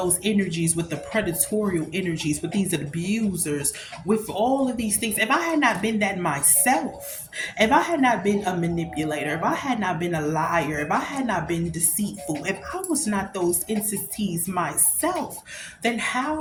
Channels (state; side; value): identical; both; correlation 1.00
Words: energies with the predatorial energies, with these abusers, with all of these things, if I had not been that myself, if I had not been a manipulator, if I had not been a liar, if I had not been deceitful, if I was not those entities myself, then